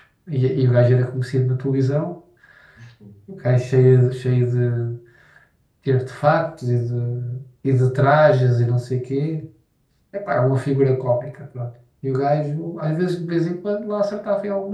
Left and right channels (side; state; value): both; identical; correlation 1.00